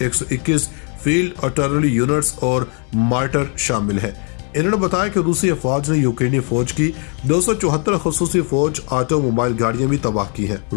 121 field artillery units और मार्टर शामिल है। इन्होंने बताया कि रूसी फौज ने यूक्रेनी फौज की 274 खसूसी फौज ऑटोमोबाइल गाड़ियां भी तबाह की हैं।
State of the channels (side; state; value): right; quieter; 39.0 dB